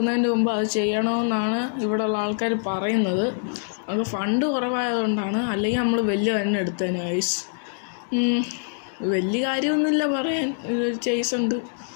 മുമ്പ് അത് ചെയ്യണമെന്നാണ് ഇവിടെയുള്ള ആൾക്കാർ പറയുന്നത്. അത് ഫണ്ട് കുറവായതുകൊണ്ടാണ്. അല്ലെങ്കിൽ നമ്മൾ വലിയ തന്നെ എടുത്തേനെ ഗൈസ്. വലിയ കാര്യമൊന്നുമില്ല പറയാൻ. ചേസുണ്ട്.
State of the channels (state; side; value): silent; right; digital silence